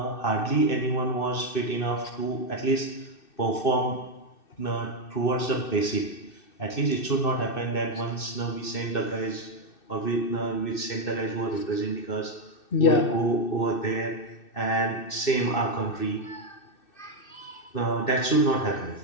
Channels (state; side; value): late; right; 2.6 ms